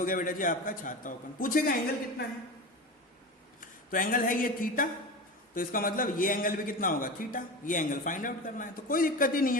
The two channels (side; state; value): both; normal; correlation 0.27